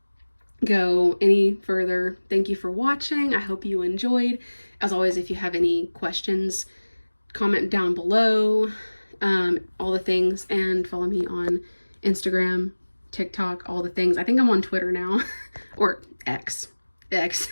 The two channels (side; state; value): both; inverted; correlation -1.00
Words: go any further, thank you for watching. I hope you enjoyed. As always, if you have any questions, comment down below, all the things, and follow me on Instagram, TikTok, all the things. I think I'm on Twitter now, or X.